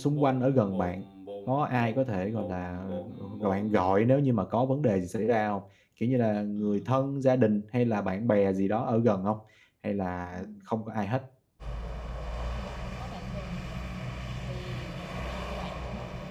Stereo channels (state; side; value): identical; both; correlation 1.00